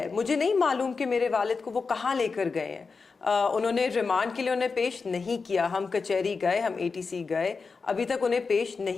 مجھے نہیں معلوم کہ میرے والد کو وہ کہاں لے کر گئے ہیں. انہوں نے ریمانڈ کے لیے انہیں پیش نہیں کیا. ہم کچہری گئے، ہم ATC گئے، ابھی تک انہیں پیش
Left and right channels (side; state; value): right; quieter; 4.7 dB